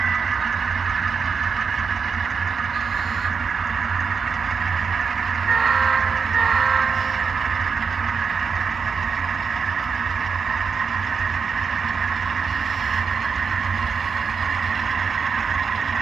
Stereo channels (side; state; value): left; quieter; 5.7 dB